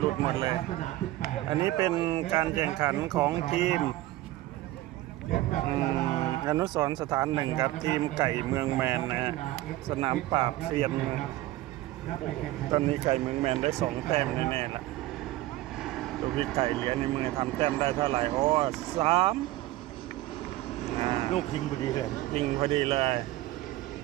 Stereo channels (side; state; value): left; quieter; 16.6 dB